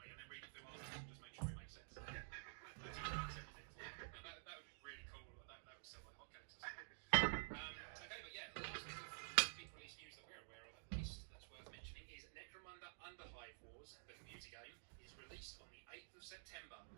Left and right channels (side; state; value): left; silent; digital silence